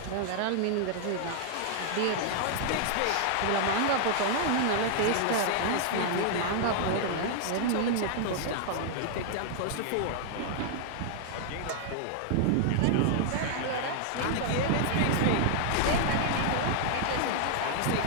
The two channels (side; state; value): both; different; correlation 0.00